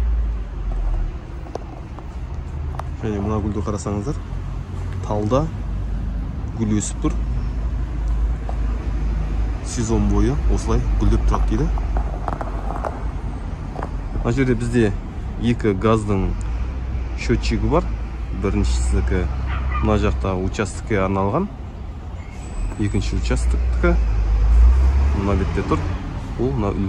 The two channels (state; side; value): identical; both; correlation 1.00